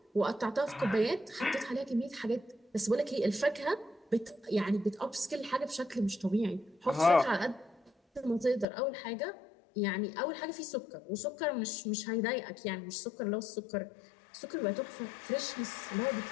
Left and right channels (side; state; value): right; drops out; at 8.7 s